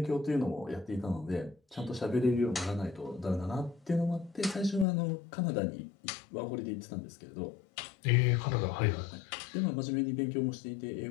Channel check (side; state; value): right; drops out; at 4.9 s